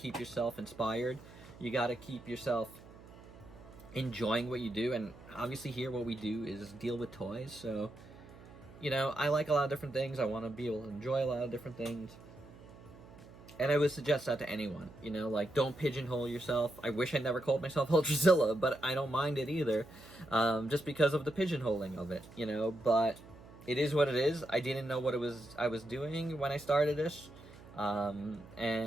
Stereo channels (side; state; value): right; noise; hum, 19 dB below the sound